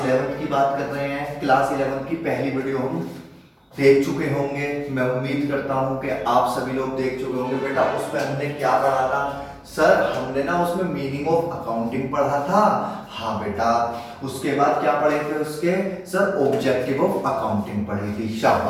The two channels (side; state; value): both; identical; correlation 1.00